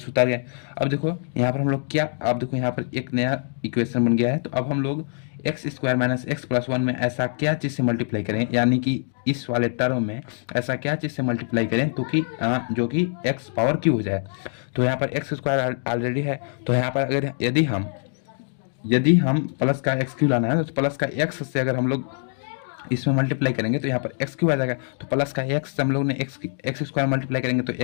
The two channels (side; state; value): right; silent; digital silence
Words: उतार गए। अब देखो यहाँ पर हम लोग क्या, अब देखो यहाँ पर एक नया इक्वेशन बन गया है। तो अब हम लोग x square minus x plus 1 में ऐसा क्या चीज़ से मल्टीप्लाई करें, यानी कि इस वाले टर्म में ऐसा क्या चीज़ से मल्टीप्लाई करें तो कि जो कि एक्स पावर क्यू हो जाए। तो यहाँ पर एक्स स्क्वायर ऑलरेडी है, तो यहाँ पर अगर यदि हम प्लस का एक्स क्यू लाना है तो प्लस का एक्स से अगर हम लोग इसमें मल्टीप्लाई करेंगे तो यहाँ पर एक्स क्यू आ जाएगा। तो प्लस का एक्स से हम लोग ने एक्स स्क्वायर मल्टीप्लाई करेंगे तो